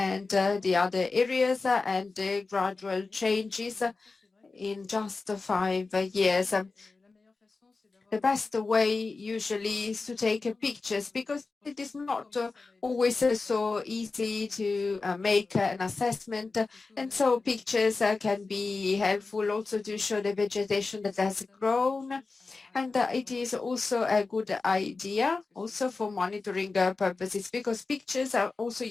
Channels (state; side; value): quieter; right; 4.0 dB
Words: the other areas and the gradual changes in just 5 years. The best way usually is to take pictures, because it is not always so easy to make an assessment. And so pictures can be helpful also to show the vegetation that has grown. And it is also a good idea also for monitoring purposes, because pictures are also